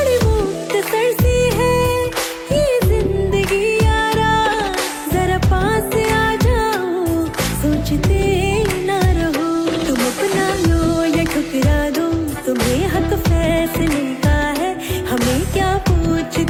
मुख्तसर सी है ये जिंदगी यारा, जरा पास आ जाओ सोचते ना रहो। तुम अपना लो या ठुकरा दो, तुम्हें हक फैसले का है, हमें क्या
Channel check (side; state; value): both; identical; correlation 1.00